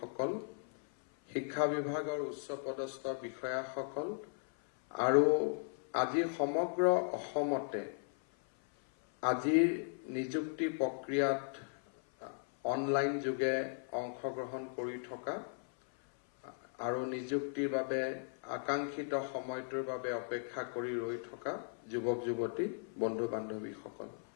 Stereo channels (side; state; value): right; silent; 53 dB below the other